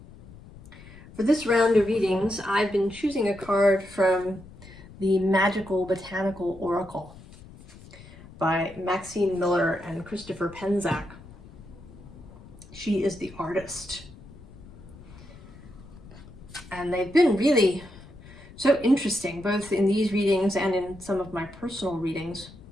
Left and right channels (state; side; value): noise; left; rumble, 19 dB below the sound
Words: For this round of readings, I've been choosing a card from the Magickal Botanical Oracle by Maxine Miller and Christopher Penczak. She is the artist. And they've been really so interesting, both in these readings and in some of my personal readings.